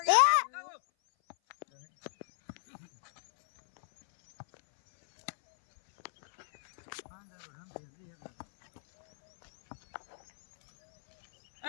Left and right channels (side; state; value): right; silent; 55 dB below the other